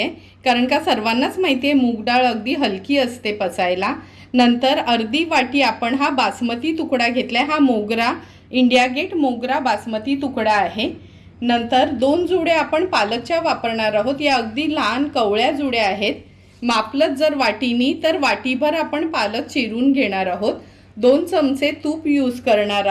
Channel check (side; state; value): both; identical; correlation 1.00